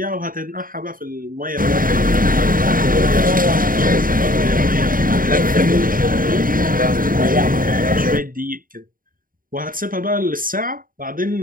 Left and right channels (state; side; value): late; left; 0.41 ms